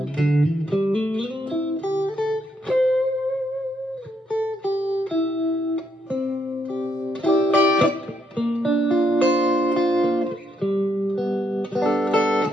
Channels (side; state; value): both; normal; correlation 0.77